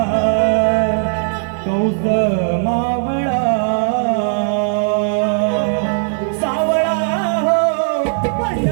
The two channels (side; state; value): left; silent; digital silence